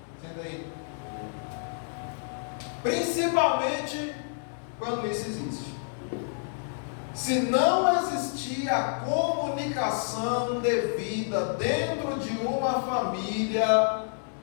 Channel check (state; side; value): silent; right; digital silence